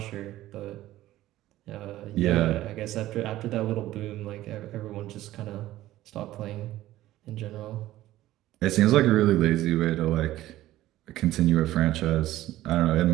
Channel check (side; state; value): left; quieter; 15.1 dB